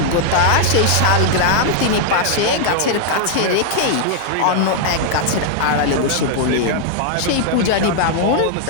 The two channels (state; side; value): different; both; correlation -0.01